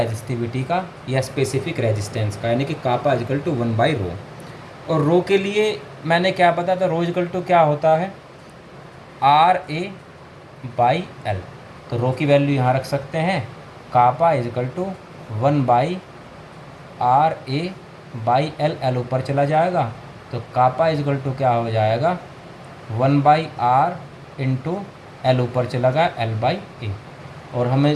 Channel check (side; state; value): both; identical; correlation 1.00